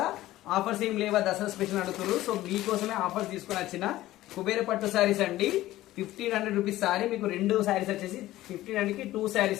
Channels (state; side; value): quieter; right; 15.7 dB